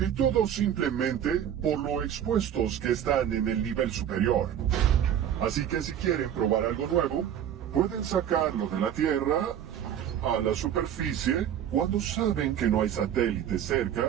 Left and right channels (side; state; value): left; quieter; 9.8 dB